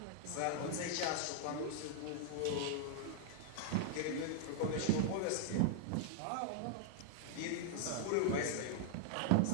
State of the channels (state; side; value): different; both; correlation 0.00